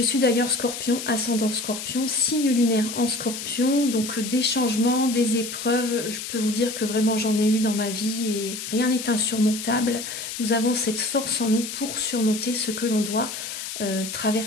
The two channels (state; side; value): noise; left; hiss, 7 dB below the sound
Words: suis d'ailleurs scorpion, ascendant scorpion, signe lunaire en scorpion. Donc des changements, des épreuves, je peux vous dire que vraiment j'en ai eu dans ma vie et rien n'est insurmontable. Nous avons cette force en nous pour surmonter ce que l'on doit